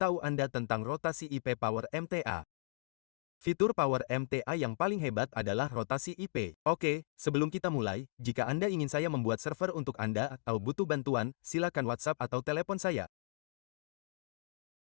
Anda tentang rotasi IP Power MTA. Fitur Power MTA yang paling hebat adalah rotasi IP. Oke, sebelum kita mulai, jika Anda ingin saya membuat server untuk Anda atau butuh bantuan, silakan WhatsApp atau telepon saya.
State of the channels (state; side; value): silent; right; digital silence